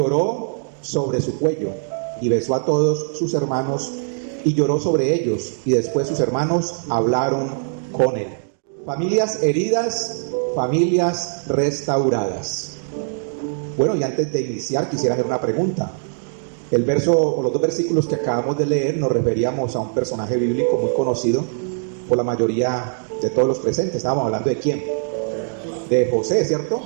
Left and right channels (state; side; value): silent; left; digital silence